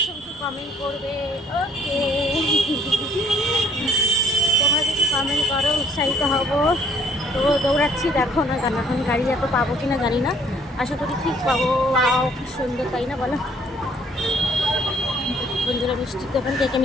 করবে। ওকে, তোমরা যদি কমেন্ট করো উৎসাহিত হব। তো দৌড়াচ্ছি, দেখো না কেন, এখন গাড়ি এত পাবো কিনা জানি না, আশা করি ঠিক পাবো। খুব সুন্দর, তাই না বলো বন্ধুরা? মিষ্টির দোকান, কে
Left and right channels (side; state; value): both; normal; correlation 0.61